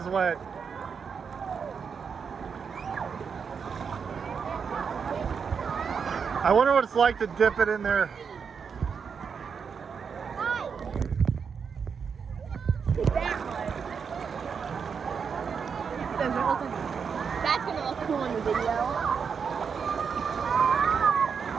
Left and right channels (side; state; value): left; quieter; 6.3 dB